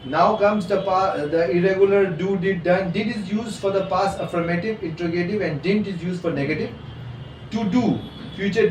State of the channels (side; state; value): both; identical; correlation 1.00